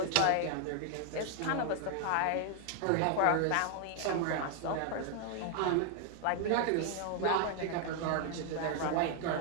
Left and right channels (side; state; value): both; different; correlation 0.00